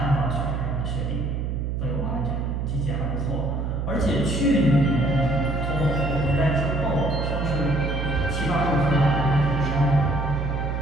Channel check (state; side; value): noise; right; hum, 1 dB below the sound